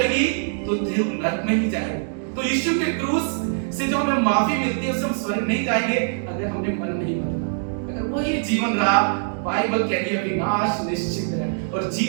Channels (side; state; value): left; silent; digital silence